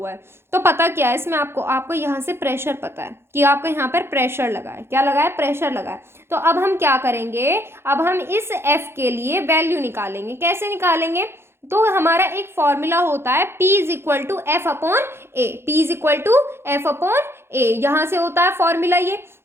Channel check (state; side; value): late; left; 0.12 ms